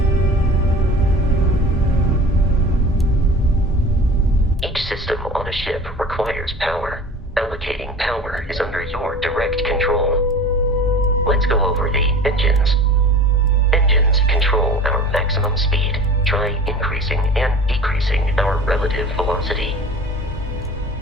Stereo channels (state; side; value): normal; both; correlation 0.39